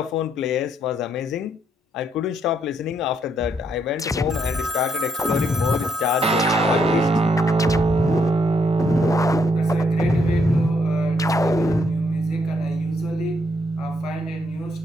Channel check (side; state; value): both; normal; correlation 0.74